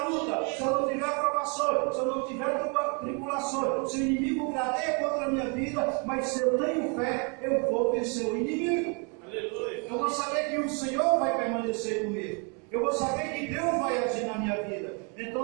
luta, se eu não tiver provações, se eu não tiver tribulações, se o inimigo gradeia contra a minha vida, mas se eu tenho fé, eu vou vencer o inimigo. Aleluia. Eu vou saber que o Senhor vai permanecer comigo. Eu vou saber que Deus vai agir na minha vida. Então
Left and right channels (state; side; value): quieter; left; 35.9 dB